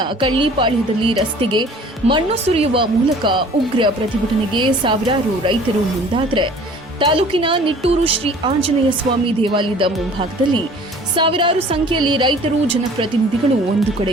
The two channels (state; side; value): normal; both; correlation 0.49